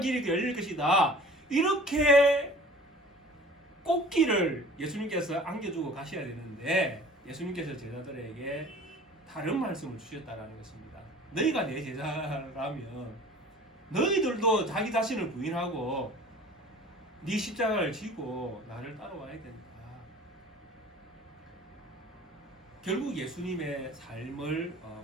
열릴 것이다, 이렇게 꽃길을 예수님께서 안겨주고 가셔야 되는데 예수님께서 제자들에게 다른 말씀을 주셨다는 것입니다. 너희가 내 제자라면 너희들도 자기 자신을 부인하고 네 십자가를 지고 나를 따라와야 된다. 결국 예수님의 삶을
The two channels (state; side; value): normal; both; correlation 0.45